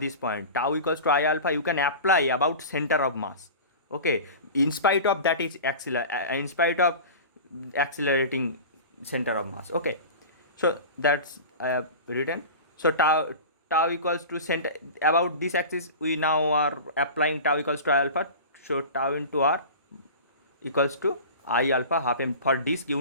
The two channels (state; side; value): inverted; both; correlation -0.33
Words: point. Tau equals to I alpha you can apply about center of mass. Okay, in spite of that is in spite of accelerating center of mass. Okay, so that's I have written. So tau equals to center about this axis. We now are applying tau equals to I alpha. So tau into r equals to I alpha half m for disc.